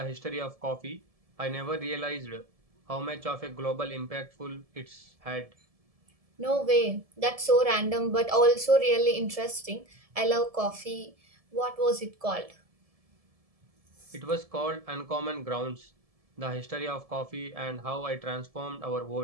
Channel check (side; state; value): left; late; 1.7 ms